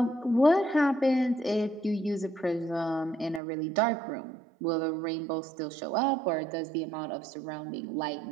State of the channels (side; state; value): left; drops out; at 3.4 s